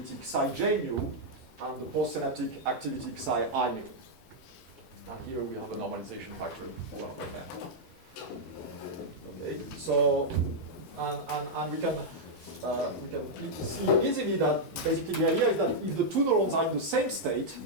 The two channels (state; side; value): normal; both; correlation -0.04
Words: psi j mu and the postsynaptic activity psi I mu. And here we have a normalization factor 1/n. Okay, so and we can see easily that basically the idea is that if the two neurons are in the same state,